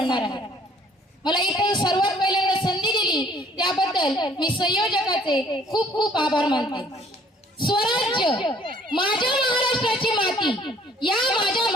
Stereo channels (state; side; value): normal; both; correlation 0.58